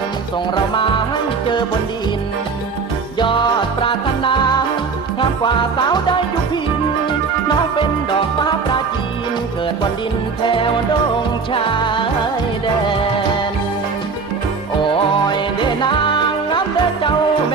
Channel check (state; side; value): quieter; left; 4.9 dB